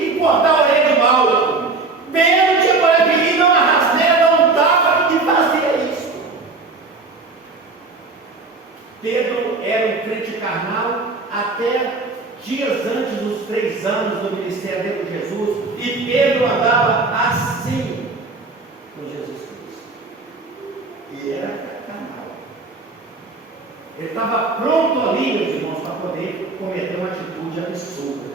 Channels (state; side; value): quieter; left; 3.8 dB